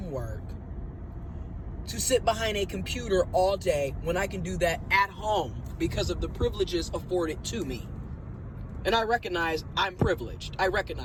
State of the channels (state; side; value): identical; both; correlation 1.00